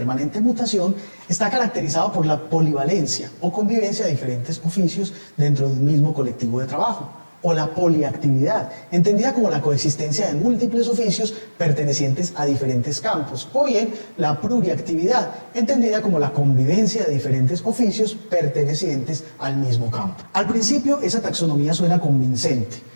mutación está caracterizado por la polivalencia o convivencia de diferentes oficios dentro de un mismo colectivo de trabajo, o la poliactividad, entendida como la coexistencia de múltiples oficios pertenecientes a diferentes campos, o bien la pluriactividad, entendida como la convivencia de diferentes oficios pertenecientes al mismo campo. Al principio, esa taxonomía suena convincente,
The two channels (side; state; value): both; inverted; correlation -1.00